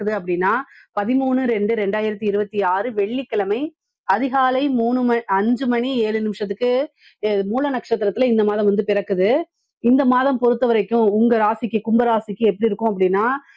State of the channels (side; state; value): both; identical; correlation 1.00